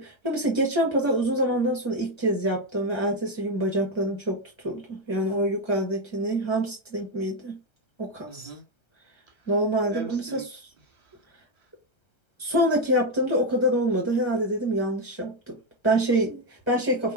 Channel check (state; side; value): late; right; 1.3 ms